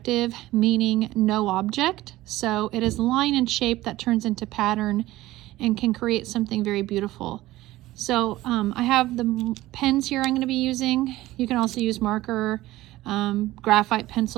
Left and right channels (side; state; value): left; quieter; 16.9 dB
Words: meaning no object, so it is line and shape that turns into pattern and can create something very beautiful. So I have the pens here I'm going to be using. You can also use marker, graphite